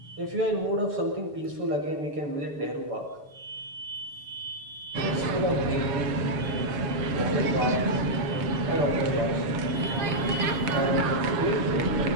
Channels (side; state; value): left; late; 7.3 ms